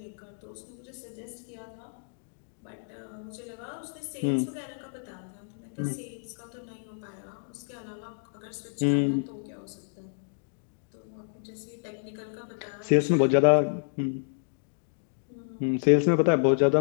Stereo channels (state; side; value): silent; right; digital silence